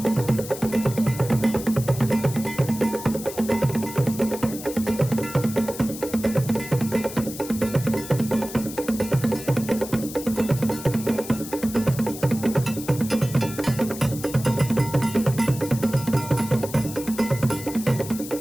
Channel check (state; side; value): noise; left; hiss, 12 dB below the sound